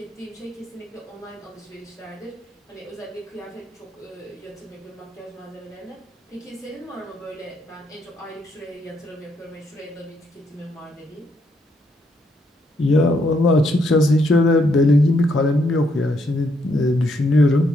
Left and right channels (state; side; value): normal; both; correlation 0.75